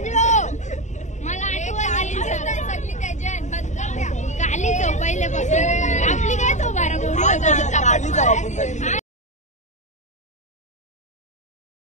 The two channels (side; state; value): right; late; 0.34 ms